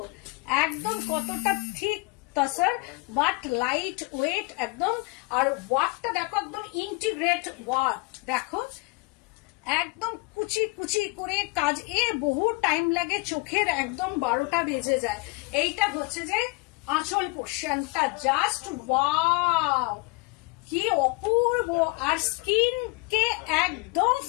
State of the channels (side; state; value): right; quieter; 27.5 dB